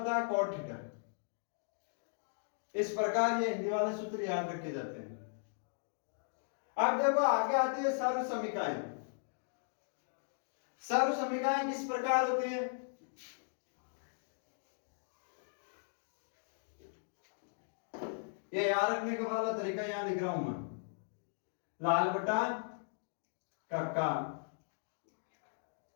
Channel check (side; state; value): right; silent; digital silence